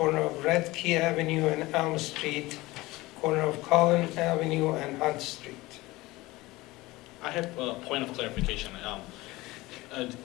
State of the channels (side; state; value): right; quieter; 20.1 dB